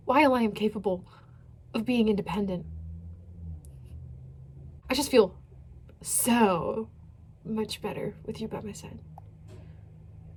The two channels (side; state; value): both; identical; correlation 1.00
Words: while I am capable of being independent. I just feel so much better with you by my side.